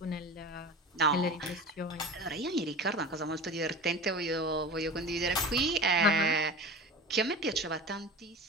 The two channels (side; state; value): both; normal; correlation 0.33